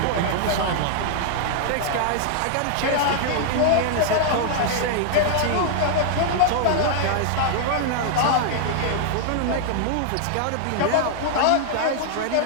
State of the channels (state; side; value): different; both; correlation -0.01